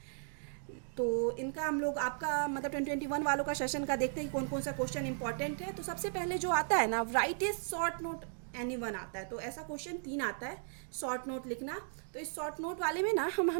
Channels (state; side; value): silent; left; digital silence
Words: तो इनका हम लोग आपका मतलब 2021 वालों का सेशन का देखते हैं कि कौन कौन सा क्वेश्चन इंपॉर्टेंट है। तो सबसे पहले जो आता है ना, right is short note anyone आता है। तो ऐसा क्वेश्चन 3 आता है, शॉर्ट नोट लिखना। तो इस शॉर्ट नोट वाले में ना हम